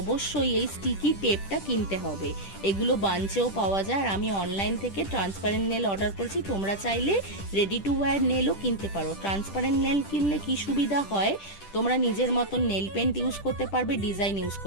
এই স্টিকি টেপটা কিনতে হবে। এগুলো বাঞ্চেও পাওয়া যায় আর আমি অনলাইন থেকে ট্রান্সপারেন্ট নেল অর্ডার করেছি। তোমরা চাইলে রেডি টু ওয়্যার নেলও কিনতে পারো। ট্রান্সপারেন্ট নেল কিনলে কি সুবিধা হয়, তোমরা নিজের মতন নেল পেন্ট ইউজ করতে পারবে, ডিজাইন ইউজ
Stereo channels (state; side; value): late; right; 10 ms